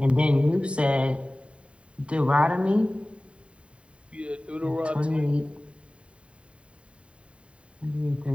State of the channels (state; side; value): late; left; 0.059 ms